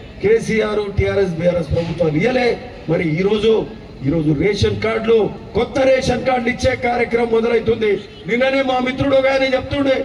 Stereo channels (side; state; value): both; identical; correlation 1.00